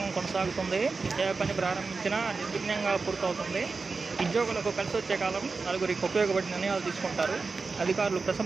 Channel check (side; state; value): left; quieter; 4.3 dB